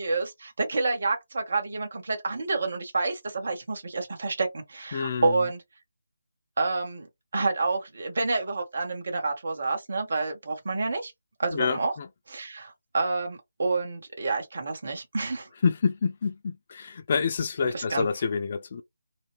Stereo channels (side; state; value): both; inverted; correlation -0.85